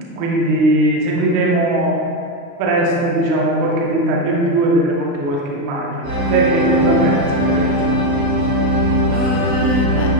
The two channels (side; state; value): left; late; 35 ms